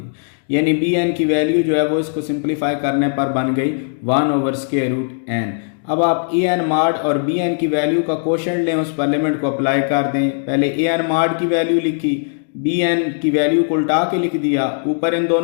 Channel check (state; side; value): silent; right; digital silence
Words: यानी बी एन की वैल्यू जो है वो इसको सिंप्लीफाई करने पर बन गई 1 ओवर स्क्वायर रूट एन। अब आप ए एन मॉड और बी एन की वैल्यू का कोशेंट लें, उस पर लिमिट को अप्लाई कर दें। पहले ए एन मॉड की वैल्यू लिखी, बी एन की वैल्यू को उल्टा के लिख दिया, ऊपर इन